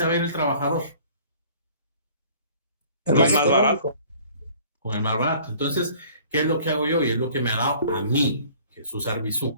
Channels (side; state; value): both; inverted; correlation -0.52